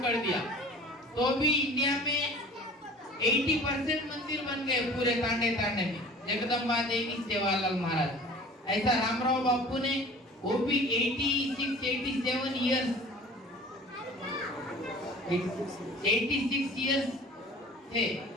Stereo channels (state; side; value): normal; both; correlation 0.45